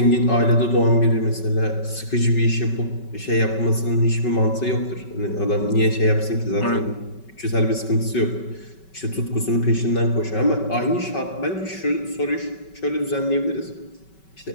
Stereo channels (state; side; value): late; right; 5.3 ms